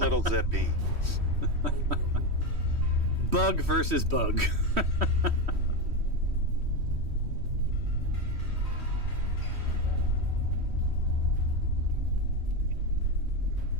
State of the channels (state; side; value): late; left; 3.1 ms